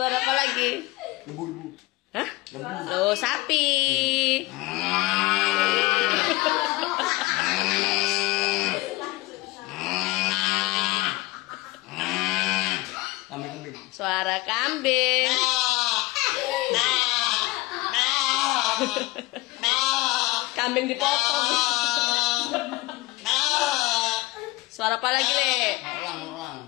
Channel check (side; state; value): right; quieter; 21.1 dB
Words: apa lagi? Lembu. Hah? Oh, sapi. Kambing. Suara kambing. Kambing dipotong. Suara apa lagi, Le?